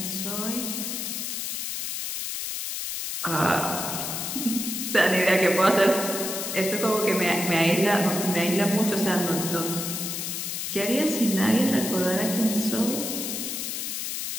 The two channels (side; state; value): left; noise; hiss, 4 dB below the sound